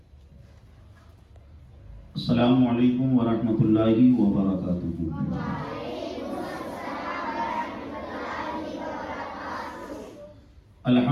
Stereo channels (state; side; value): identical; both; correlation 1.00